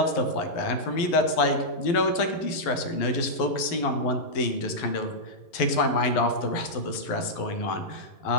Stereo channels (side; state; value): right; late; 11 ms